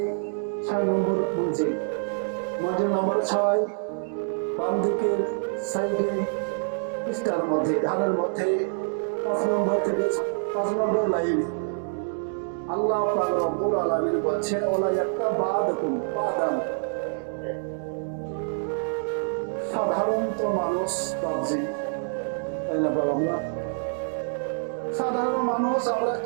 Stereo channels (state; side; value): silent; left; digital silence